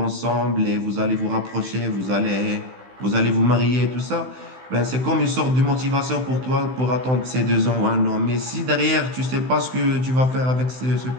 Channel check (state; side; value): late; left; 16 ms